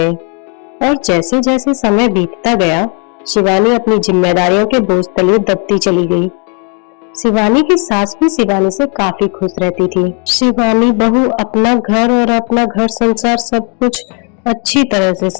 और जैसे जैसे समय बीतता गया, शिवानी अपनी जिम्मेदारियों के बोझ तले दबती चली गई। शिवानी की सास भी शिवानी से काफी खुश रहती थी। शिवानी बहू अपना घर और अपना घर संसार सब कुछ अच्छी तरह से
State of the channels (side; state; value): right; quieter; 37.5 dB